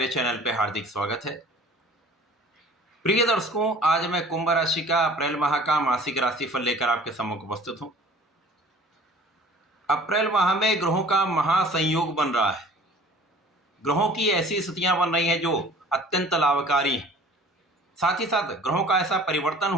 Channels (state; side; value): normal; both; correlation 0.48